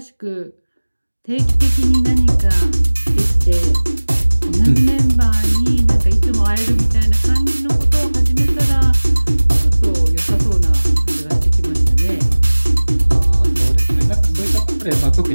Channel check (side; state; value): both; inverted; correlation -1.00